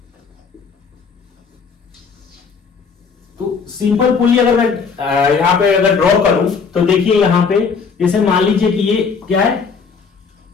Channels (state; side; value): quieter; right; 5.5 dB